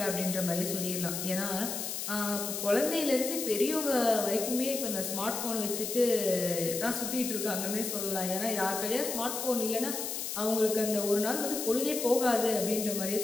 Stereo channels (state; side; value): noise; left; hiss, 4 dB below the sound